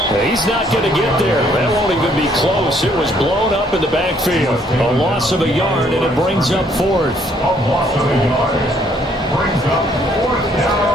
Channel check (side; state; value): both; normal; correlation 0.66